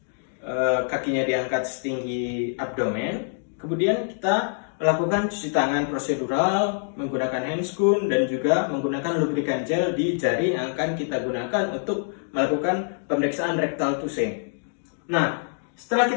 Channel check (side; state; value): right; silent; digital silence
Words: kakinya diangkat setinggi abdomen, kemudian kita melakukan cuci tangan prosedural menggunakan handscoon dan juga menggunakan lubrikan gel di jari yang akan kita gunakan untuk melakukan pemeriksaan rectal touche. Nah, setelah